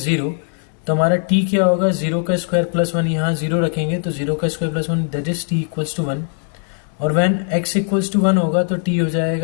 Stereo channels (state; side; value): silent; right; digital silence